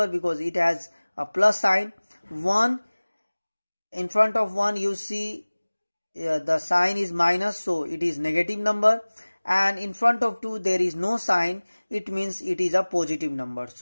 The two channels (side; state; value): both; inverted; correlation -1.00